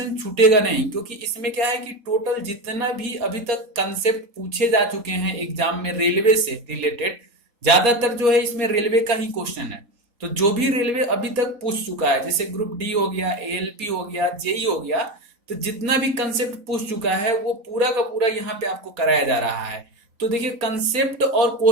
छूटेगा नहीं, क्योंकि इसमें क्या है कि टोटल जितना भी अभी तक कंसेप्ट पूछे जा चुके हैं एग्जाम में रेलवे से रिलेटेड, ज्यादातर जो है इसमें रेलवे का ही क्वेश्चन है। तो जो भी रेलवे अभी तक पूछ चुका है, जैसे ग्रुप डी हो गया, एएलपी हो गया, जेई हो गया, तो जितना भी कंसेप्ट पूछ चुका है वो पूरा का पूरा यहाँ पे आपको कराया जा रहा है। तो देखिए, कंसेप्ट और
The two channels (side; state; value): left; late; 4.2 ms